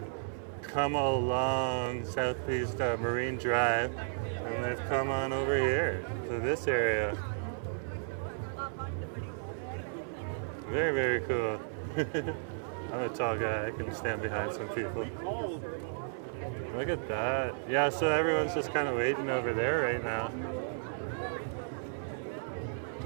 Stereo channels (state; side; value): silent; left; 55 dB below the other